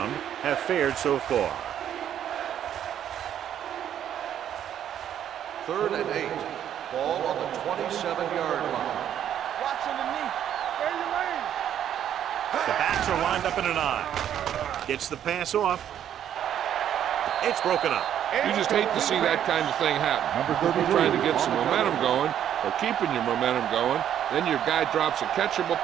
have fared so far. 3rd and 8. Ball on the 27-yard line. Watch underneath. Stay your lane. The backs are lined up in an I. Gets the pass off. It's broken up. You just hate to see that kind of thing happen. You're trying to get some momentum going or keeping your momentum going, then your guy drops a catchable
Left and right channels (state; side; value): quieter; left; 10.1 dB